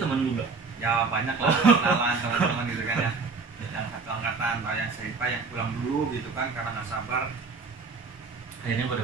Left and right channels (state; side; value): quieter; left; 4.5 dB